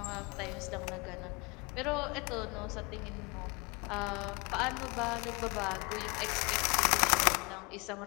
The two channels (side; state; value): right; quieter; 28.5 dB